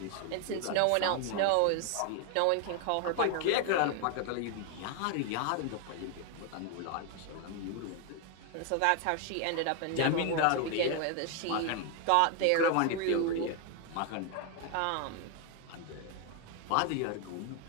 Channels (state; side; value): different; both; correlation 0.01